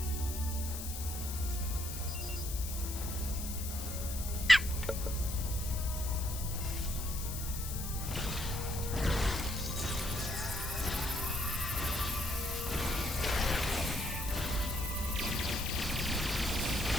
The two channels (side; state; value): left; noise; hiss, 7 dB below the sound